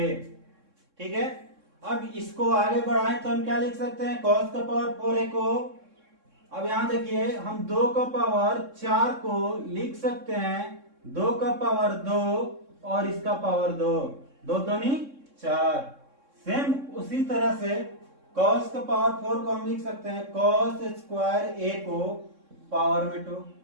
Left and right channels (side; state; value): left; late; 3.6 ms